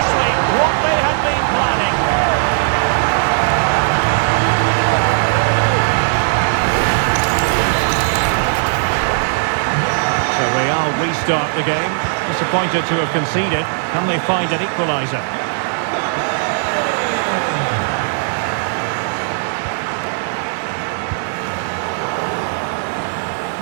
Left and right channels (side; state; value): left; silent; digital silence